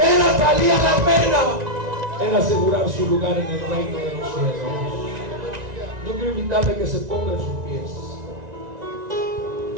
valía la pena era asegurar su lugar en el reino de los cielos. Yo quiero invitarle a que se ponga en sus pies.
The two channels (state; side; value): late; left; 1.9 ms